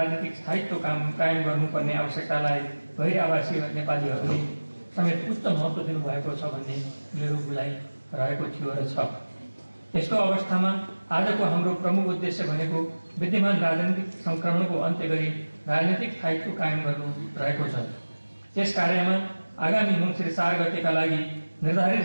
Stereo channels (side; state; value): both; inverted; correlation -1.00